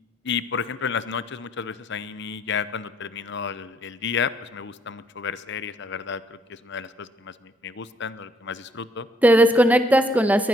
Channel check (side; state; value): both; normal; correlation 0.66